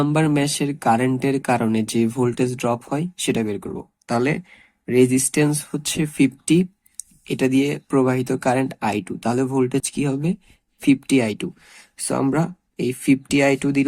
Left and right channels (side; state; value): both; identical; correlation 1.00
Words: ম্যাশের কারেন্টের কারণে যে ভোল্টেজ ড্রপ হয় সেটা বের করব। তাহলে রেজিস্ট্যান্স হচ্ছে 50, এটা দিয়ে প্রবাহিত কারেন্ট I2, তাহলে ভোল্টেজ কি হবে? 50I2। সো আমরা এই 50I2